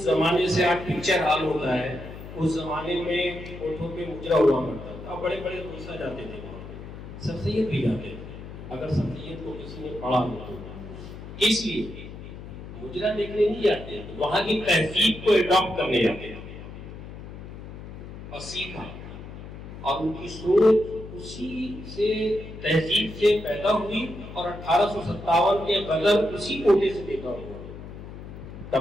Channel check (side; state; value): left; noise; hum, 12 dB below the sound